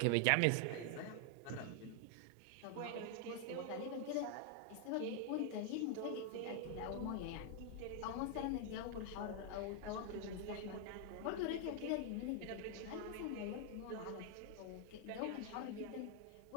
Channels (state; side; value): different; both; correlation 0.00